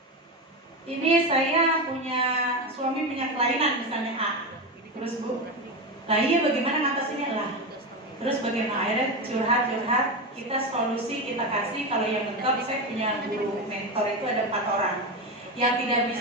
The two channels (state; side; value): normal; both; correlation 0.17